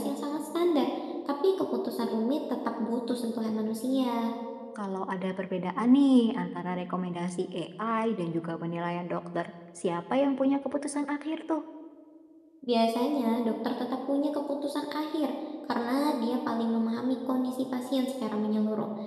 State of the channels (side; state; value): both; identical; correlation 1.00